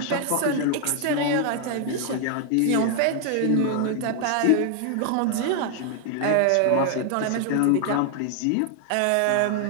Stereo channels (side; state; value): both; different; correlation 0.00